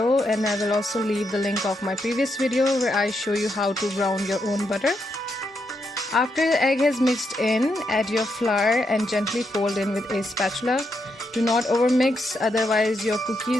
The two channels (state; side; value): normal; both; correlation 0.81